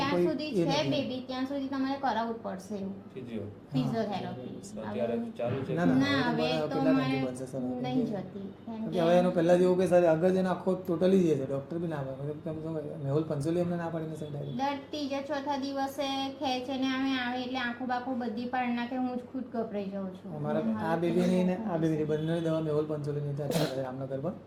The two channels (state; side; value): identical; both; correlation 1.00